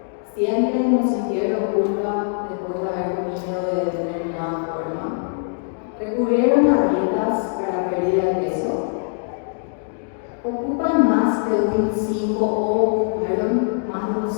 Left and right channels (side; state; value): right; silent; 64 dB below the other